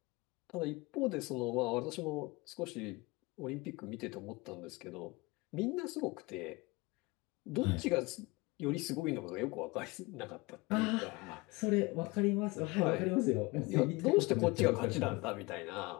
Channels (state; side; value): quieter; right; 24.1 dB